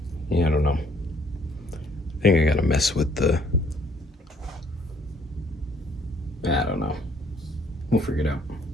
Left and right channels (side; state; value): both; normal; correlation 0.64